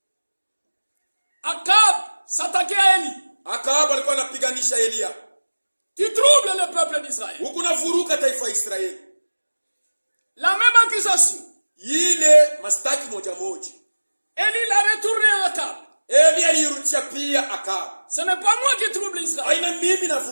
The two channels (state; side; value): inverted; both; correlation -1.00